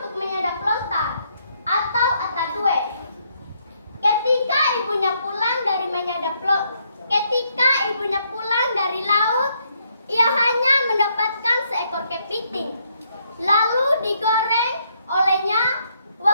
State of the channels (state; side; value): inverted; both; correlation -0.73